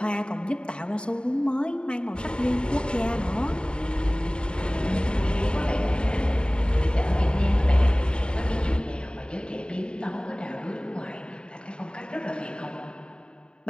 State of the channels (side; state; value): right; late; 0.051 ms